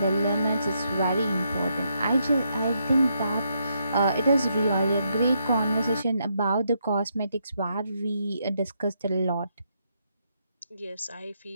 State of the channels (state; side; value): inverted; both; correlation -0.78